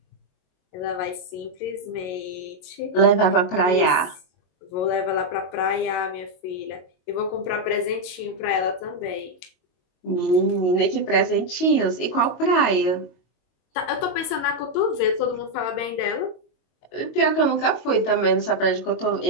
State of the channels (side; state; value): right; late; 22 ms